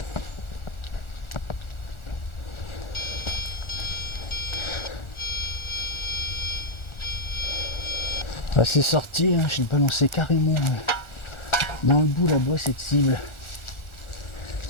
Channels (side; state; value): right; late; 1.4 ms